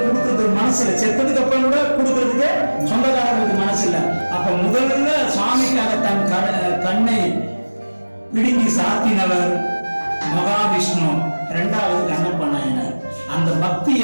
கொடுக்கறதுக்கு மனசு இல்லை. செத்ததுக்கு அப்புறம் கூட கொடுக்கறதுக்கு சொந்தக்காரர்களுக்கு மனசு இல்லை. அப்ப முதல்ல சுவாமிக்காக தன் கண்ணை பிடுங்கி சாத்தினவர் மகாவிஷ்ணு, 2வது கண்ணப்ப நாயனார். அந்த பக்தி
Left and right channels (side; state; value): both; inverted; correlation -1.00